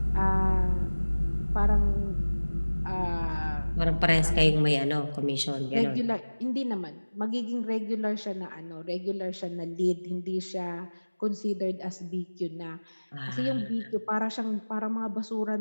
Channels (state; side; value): inverted; both; correlation -1.00